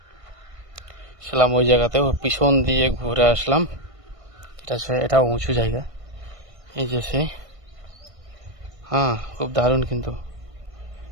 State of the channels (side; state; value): left; late; 1.6 ms